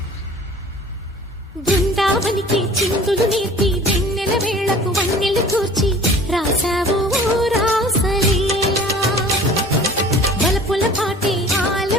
బృందావనికి చిందులు నేర్పి వెన్నెల వేళకు వన్నెలు కూర్చి రాసావు రాసలీలా. బలపుల పాటే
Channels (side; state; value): both; normal; correlation 0.46